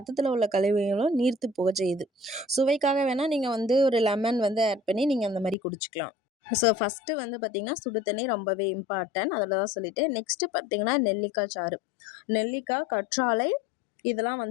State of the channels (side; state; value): right; drops out; at 5.6 s